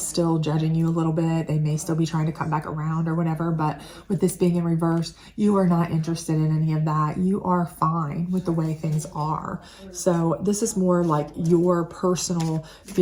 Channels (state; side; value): identical; both; correlation 1.00